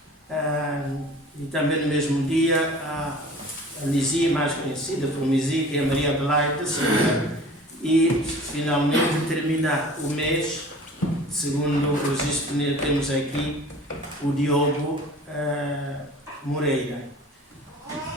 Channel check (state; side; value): normal; both; correlation 0.44